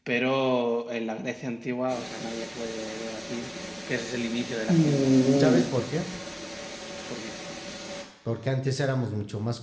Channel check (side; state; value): both; identical; correlation 1.00